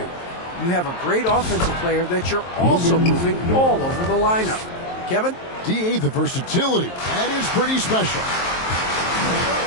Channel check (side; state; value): right; late; 23 ms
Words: You have a great offensive player that you're also moving all over the lineup." Kevin? DA, the versatility. That is pretty special.